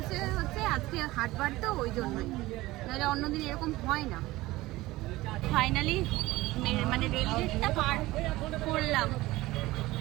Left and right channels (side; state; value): left; quieter; 18.6 dB